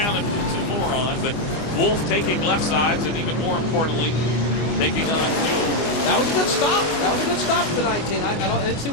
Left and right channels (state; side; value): late; right; 24 ms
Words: and put 2 more on, but Wolfe taking left sides, and even more importantly, taking on fuel. That was a good stop. That was a good stop for the 19. I didn't see